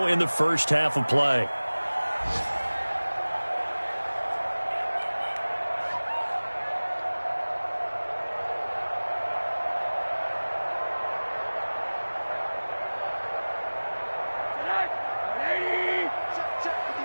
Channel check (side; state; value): both; inverted; correlation -1.00